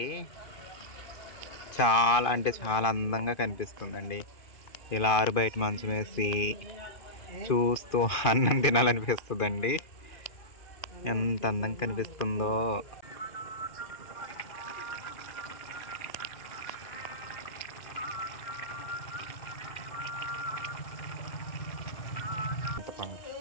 చాలా అంటే చాలా అందంగా కనిపిస్తుందండి. ఇలా ఆరు బయట మంచం వేసి చూస్తూ అన్నం తినాలనిపిస్తుందండి. ఎంత అందంగా కనిపిస్తుందో.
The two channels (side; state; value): right; late; 2.5 ms